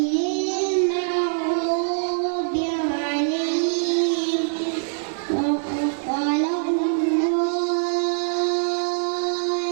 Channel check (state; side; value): silent; left; digital silence